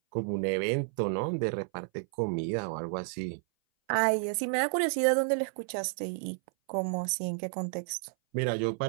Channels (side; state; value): left; silent; 57 dB below the other